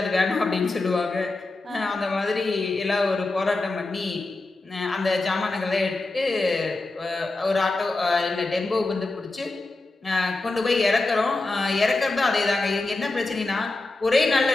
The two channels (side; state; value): right; quieter; 3.1 dB